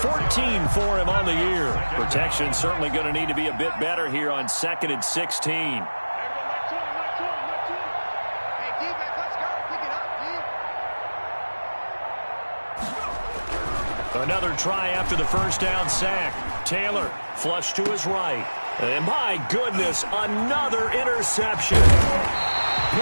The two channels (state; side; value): inverted; both; correlation -1.00